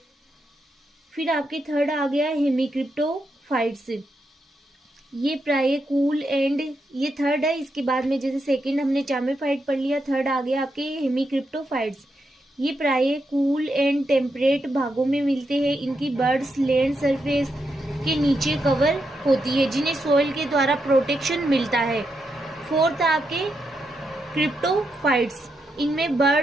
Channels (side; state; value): both; normal; correlation 0.83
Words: फिर आपके थर्ड आ गया हेमिक्रिप्टोफाइट्स। ये प्राय कूल एंड, ये थर्ड है, इसके बाद में जैसे सेकंड हमने चामेफाइट पढ़ लिया, थर्ड आ गया आपके हेमिक्रिप्टोफाइट्स। ये प्राय कूल एंड टेम्परेट भागों में मिलते हैं। इनकी बर्ड्स लैंड सरफेस के नीचे कवर होती है, जिन्हें सोइल के द्वारा प्रोटेक्शन मिलता है। फोर्थ आपके क्रिप्टोफाइट्स। इनमें